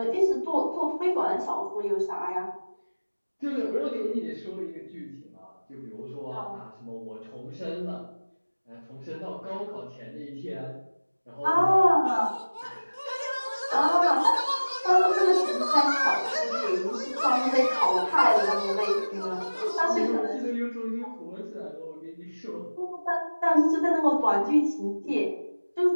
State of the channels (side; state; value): both; inverted; correlation -1.00